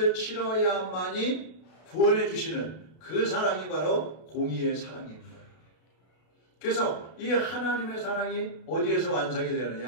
치러야만이 구원해 주시는 그 사랑이 바로 공의의 사랑인 거예요. 그래서 이 하나님의 사랑이 어디에서 완성이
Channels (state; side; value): late; right; 32 ms